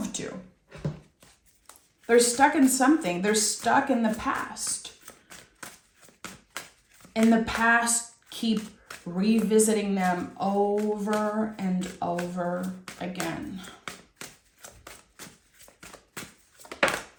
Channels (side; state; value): both; identical; correlation 1.00